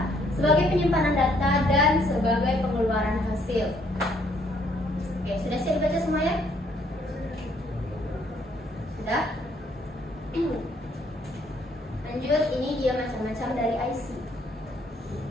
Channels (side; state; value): both; normal; correlation 0.67